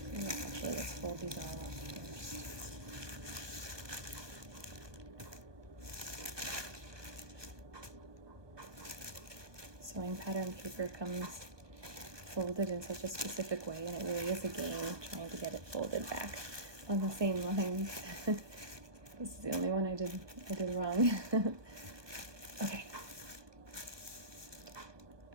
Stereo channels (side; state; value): left; late; 1.2 ms